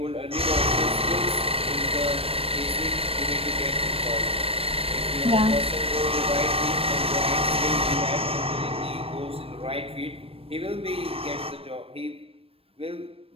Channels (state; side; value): late; left; 0.28 ms